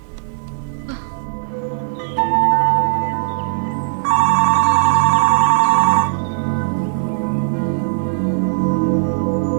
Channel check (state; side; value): silent; left; digital silence